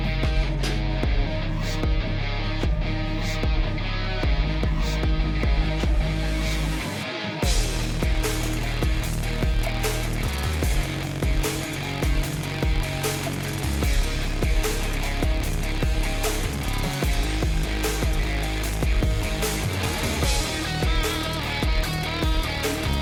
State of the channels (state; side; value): identical; both; correlation 1.00